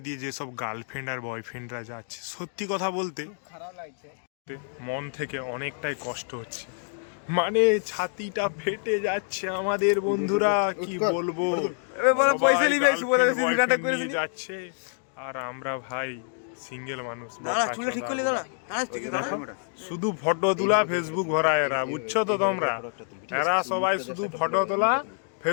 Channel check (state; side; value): silent; right; 60 dB below the other